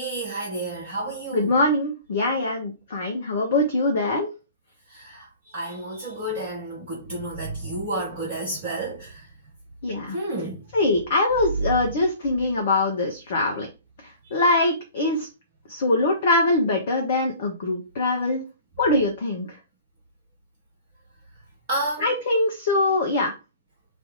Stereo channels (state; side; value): inverted; both; correlation -0.47